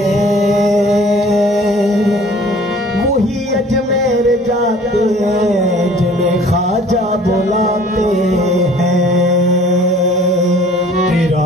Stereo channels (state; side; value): normal; both; correlation 0.51